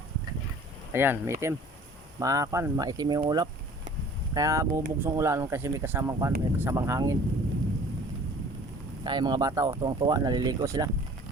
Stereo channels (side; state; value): both; normal; correlation 0.48